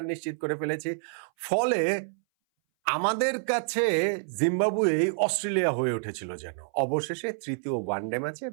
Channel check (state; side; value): silent; left; 59 dB below the other